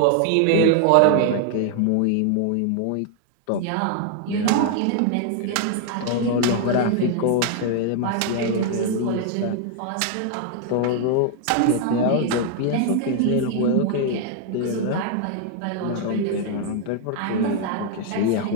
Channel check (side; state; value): both; different; correlation 0.00